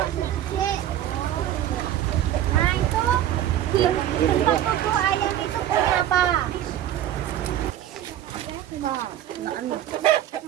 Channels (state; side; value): quieter; left; 11.9 dB